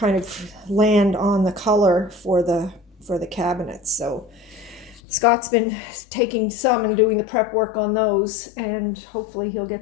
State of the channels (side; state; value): right; drops out; at 5.0 s